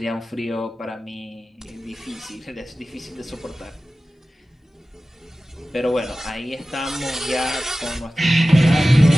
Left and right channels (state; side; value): normal; both; correlation 0.96